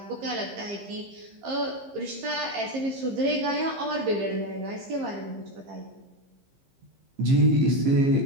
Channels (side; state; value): left; late; 15 ms